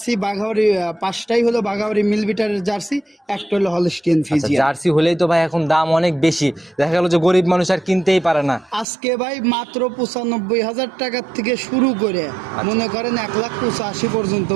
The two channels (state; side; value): drops out; left; at 8.8 s